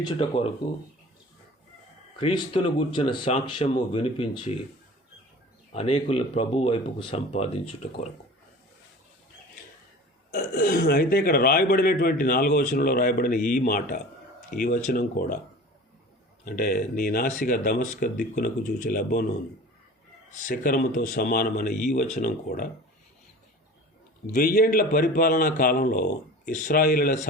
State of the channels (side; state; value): both; normal; correlation 0.39